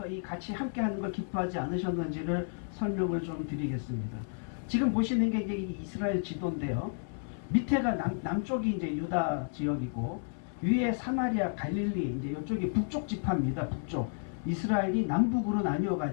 이 같이 함께 하는 걸 기뻐하지 않으셨는지를 설명을 좀 드리겠습니다. 지금 보시는 게 이제 이스라엘 지도인데요. 밑에가 남쪽이 이제 유다 지역이고 위에 사마리아, 갈릴리, 이제 이쪽이 북쪽 지파입니다. 북쪽. 이스라엘이 남북으로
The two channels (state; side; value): silent; right; 56 dB below the other